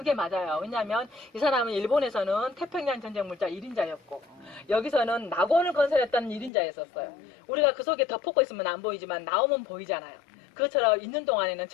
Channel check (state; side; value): drops out; right; at 6.5 s